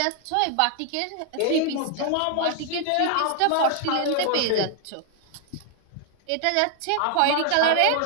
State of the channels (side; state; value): both; different; correlation 0.00